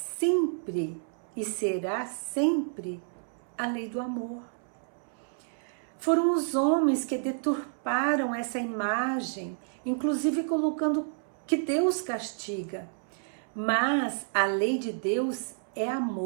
e será sempre a lei do amor. Foram os homens que deturparam essa imagem, inclusive colocando que Deus castiga. Mas a lei de Deus é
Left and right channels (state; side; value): silent; left; 58 dB below the other